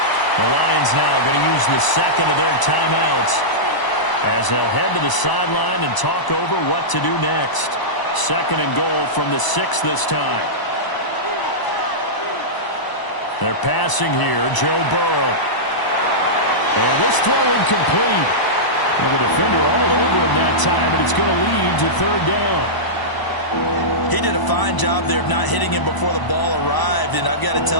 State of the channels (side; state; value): right; late; 1.0 ms